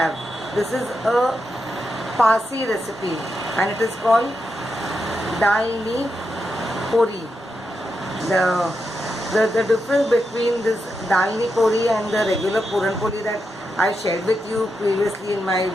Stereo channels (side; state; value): both; normal; correlation 0.86